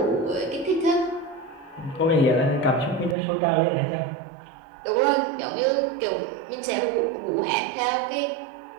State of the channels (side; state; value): left; drops out; at 3.2 s